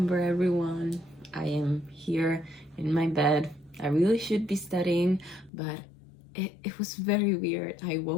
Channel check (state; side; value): drops out; right; at 5.5 s